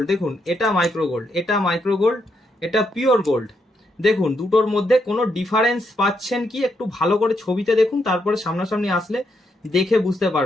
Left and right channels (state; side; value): normal; both; correlation 0.79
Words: দেখুন এটা মাইক্রো গোল্ড, এটা মাইক্রো গোল্ড, এটা পিওর গোল্ড। দেখুন দুটোর মধ্যে কোনো ডিফারেন্স পাচ্ছেন কি একটু ভালো করে ছবিতে দেখুন, তারপরে সামনাসামনি আসলে দেখে বুঝতে